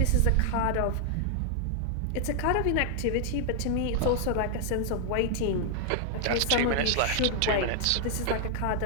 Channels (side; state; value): both; different; correlation -0.01